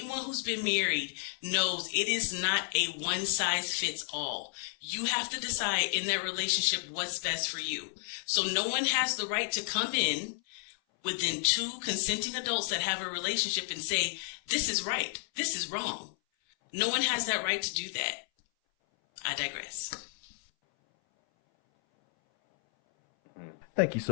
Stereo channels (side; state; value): right; silent; 57 dB below the other